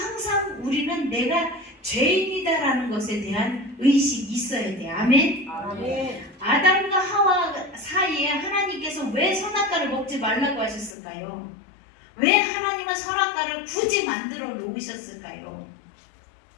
우리는 내가 죄인이다라는 것에 대한 의식이 있어야 돼요. 아멘. 아멘. 아담과 하와 사이에 하나님께서 왜 선악과를 먹지 말라고 하셨을까요? 왜 하나님은 선악과를 굳이 만들어 놓으셨을까요?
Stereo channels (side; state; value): right; drops out; at 11.0 s